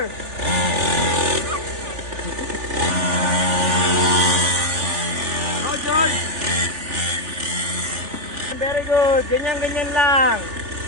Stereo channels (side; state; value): left; late; 3.4 ms